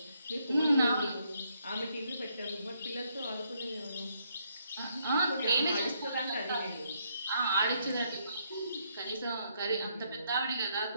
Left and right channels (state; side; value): inverted; both; correlation -0.73